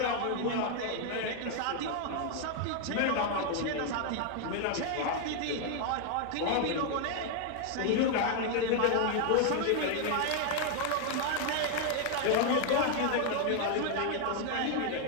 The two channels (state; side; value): different; both; correlation 0.00